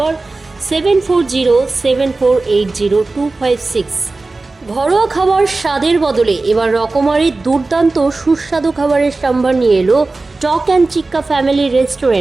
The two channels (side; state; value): left; quieter; 3.4 dB